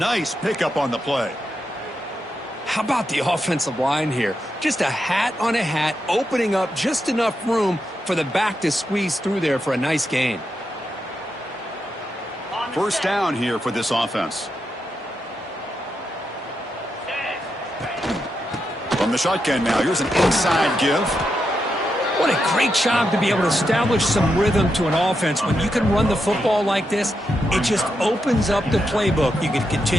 pickup on the play. How about the offensive line here? Just a hat on a hat, opening up just enough room for the back to squeeze through there for a nice gain. First down here for this offense. From the shotgun now, here's an inside give. What a great job to be able to establish some rhythm to an offense. When you can run the football like this, it just opens up the playbook. You can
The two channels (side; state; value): both; normal; correlation 0.84